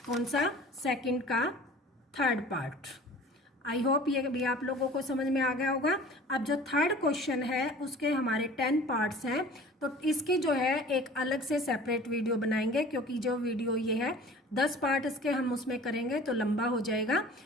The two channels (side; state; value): both; normal; correlation 0.45